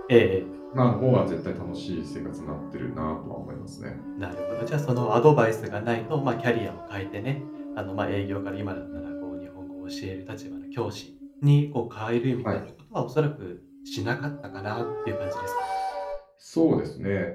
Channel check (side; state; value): both; identical; correlation 1.00